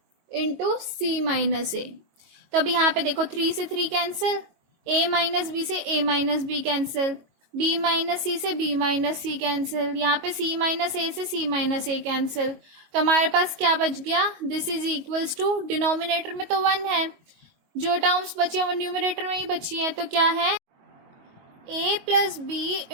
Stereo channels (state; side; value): late; left; 22 ms